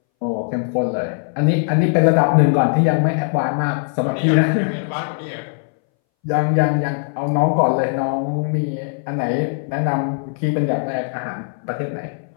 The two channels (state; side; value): silent; right; 63 dB below the other